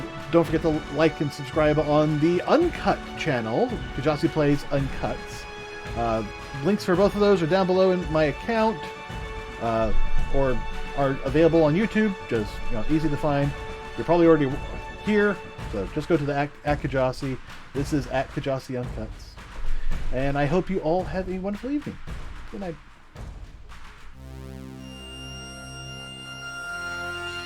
don't forget to like and subscribe on the Uncut channel, Kjasi Plays Uncuts. Links for both of those are down below in my account, or are available on YouTube. Just easy to find. You're probably already here, so just go to the @Kjasi. This is @Kjasi Uncuts, and I hope you all have a wonderful evening. Good night.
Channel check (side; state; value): both; identical; correlation 1.00